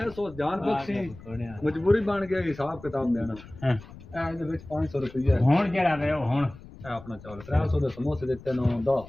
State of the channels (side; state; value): left; noise; rumble, 18 dB below the sound